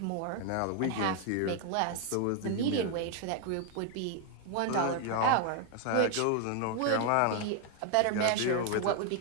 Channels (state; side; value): different; both; correlation 0.01